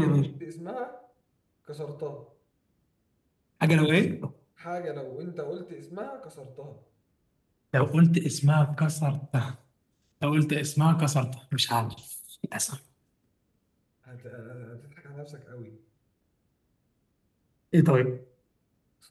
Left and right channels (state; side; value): identical; both; correlation 1.00